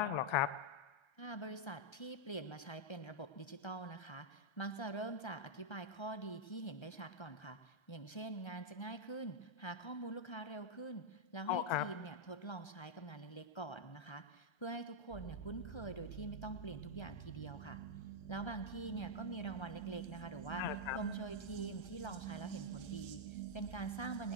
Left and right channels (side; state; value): right; late; 1.3 ms